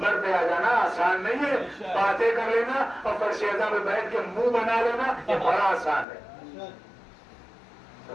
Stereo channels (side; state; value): right; drops out; at 6.1 s